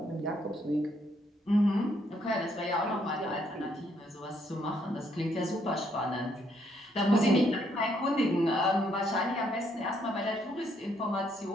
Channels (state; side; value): normal; both; correlation 0.71